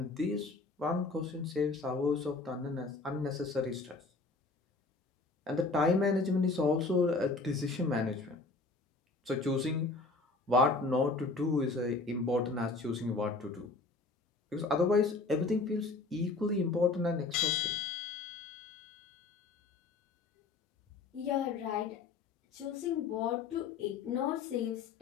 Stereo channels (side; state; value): right; quieter; 3.8 dB